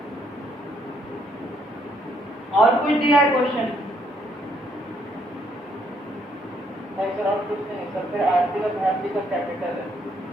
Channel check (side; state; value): both; normal; correlation 0.70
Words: और कुछ दिया है क्वेश्चन? नहीं सर और कुछ नहीं सर। फिर आरती और भारती का कैपिटल है।